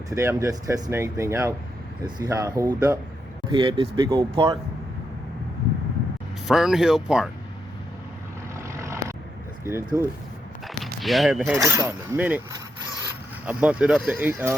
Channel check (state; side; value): normal; both; correlation 0.82